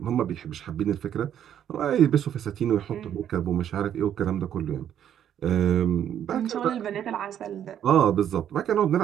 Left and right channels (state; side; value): quieter; left; 10.0 dB